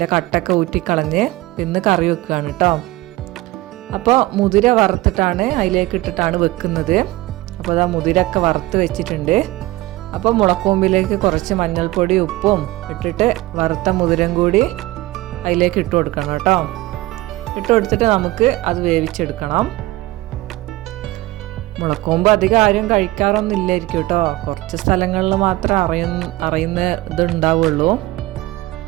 കട്ടൊക്കെ ഊറ്റിക്കളഞ്ഞ് ഇന്ന് കറി വെക്കുകയാണ് കേട്ടോ. അപ്പോൾ മുതിര വറുത്തിട്ടാണ് അതിലേക്ക് ഇട്ടിട്ടാണ് വെക്കുന്നത്. അപ്പോൾ അതാ മുതിരൊക്കെ വറുത്ത് വെച്ചിട്ടുണ്ട്. അപ്പോൾ മുളക്കൂമ്പിലേക്ക് കുറച്ച് മഞ്ഞൾപ്പൊടി ഉപ്പും ഇട്ടിട്ട് വറുത്ത മുതിരം കൂടി അതിലേക്ക് ഇട്ട് കൊടുക്കണം കേട്ടോ. ഇട്ട് കൊടുത്തിട്ട് നമുക്ക് അത് വേവിച്ചെടുക്കണം. മുളക്കൂമ്പ് അധികം ആരും കഴിക്കാറൊന്നും ഇല്ലായിരിക്കും കേട്ടോ. കുറച്ച് സ്ഥലങ്ങളിൽ മാത്രമേ അറിയുന്ന ഇതുണ്ടാവുള്ളൂ.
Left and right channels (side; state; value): left; quieter; 18.5 dB